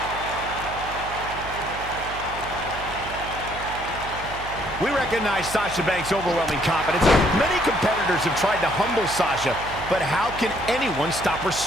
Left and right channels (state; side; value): noise; right; hum, 12 dB below the sound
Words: We recognize Sasha Banks' overwhelming confidence. Many competitors have tried to humble Sasha, but how can anyone stop her